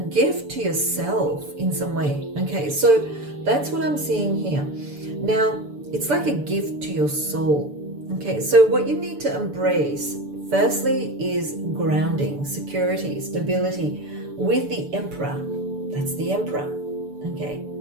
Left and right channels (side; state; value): left; late; 6.9 ms